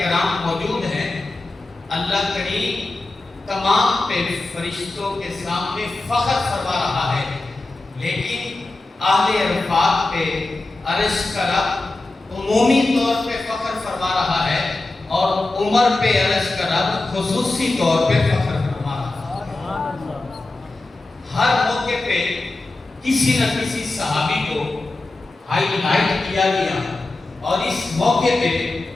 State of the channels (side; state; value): right; quieter; 3.0 dB